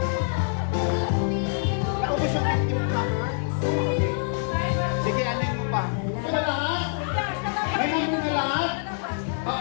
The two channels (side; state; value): right; silent; digital silence